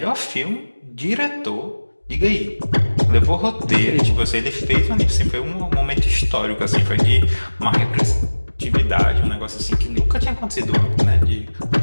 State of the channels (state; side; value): inverted; both; correlation -1.00